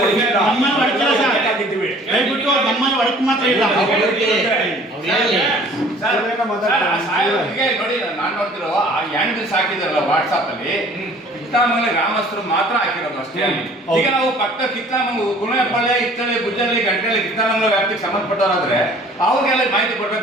ನೋಡಿ, ನಾನು ನೋಡ್ತಿರೋ ಆ ಹ್ಯಾಂಡಲ್ಸ್ ಹಾಕಿದಾರಲ್ಲ ವಾಟ್ಸಾಪ್ ಅಲ್ಲಿ, ಕಿತ್ತಾಮಂಗಲ ಗ್ರಾಮಸ್ಥರು ಮಾತ್ರ ಹಾಕಿರೋದು ಅಷ್ಟೇ. ಈಗ ನಾವು ಪಕ್ಕ ಕಿತ್ತಾಮಂಗಲ, ಕುಣೆಪಾಳ್ಯ, ಇತ್ತಳ್ಳಿ, ಗುಜ್ಜಳ್ಳಿ, ಗಂಟೆಳ್ಳಿ, ಕಿತ್ತಾಮಂಗಲ ವ್ಯಾಪ್ತಿಗೆ ಸಂಬಂಧಪಟ್ಟವರಾದ್ರೆ ಅವ್ರಿಗೆಲ್ಲ ಮಾಹಿತಿ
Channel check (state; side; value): normal; both; correlation 0.52